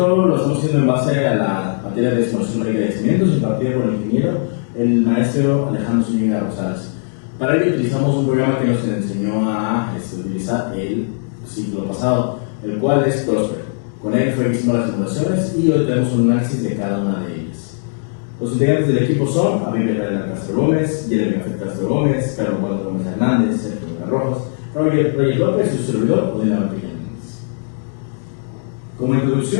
lo estamos haciendo en base a la materia de simulación numérica de yacimientos impartida por el ingeniero, el maestro Alejandro Zúñiga Rosales. Para ello utilizamos un programa que nos enseñó a utilizar el ciclo pasado, el cual es Prosper. Con él fue que hicimos las simulaciones y hoy tenemos un análisis de cada una de ellas. Los integrantes del equipo son Abigail Israel Alcázar Gómez, Jeremy Gafet Castro Gómez, Carlos Waldo Gómez Hernández, Sergio Vega Rojas, Roger López y su servidor Odena Vampilla Hernández. Como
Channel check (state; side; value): silent; right; digital silence